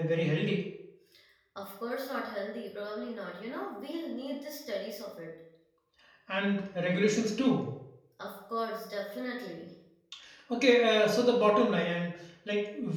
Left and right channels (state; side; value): identical; both; correlation 1.00